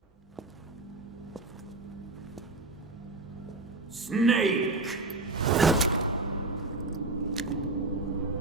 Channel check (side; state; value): left; quieter; 3.2 dB